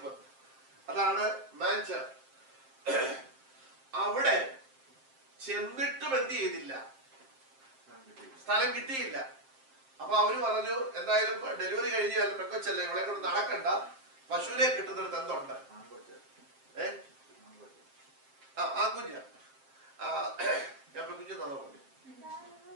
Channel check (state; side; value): late; left; 7.6 ms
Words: അതാണ് മാൻചർ. അവിടെ ചെന്നിട്ടും എന്ത് ചെയ്തില്ല? സ്ഥലം കിട്ടിയില്ല. അപ്പൊ അവര് പറഞ്ഞു, എന്തായാലും ഡെലിവറി കഴിഞ്ഞാൽ പെങ്കൊച്ചല്ലേ, ഇവിടെ കൊണ്ട് നടക്കണ്ട, പശുവിനെ കിട്ടുന്നിടത്ത് എന്തുണ്ട്? ആൺകുഞ്ഞ. ഞാൻ പെൺകുഞ്ഞ് തന്നോ പറഞ്ഞു.